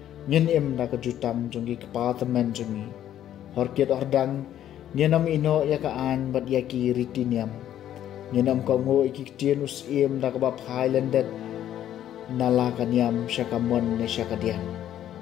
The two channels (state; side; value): quieter; right; 11.3 dB